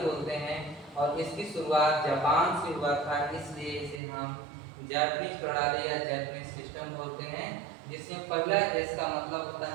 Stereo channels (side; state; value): left; drops out; at 4.0 s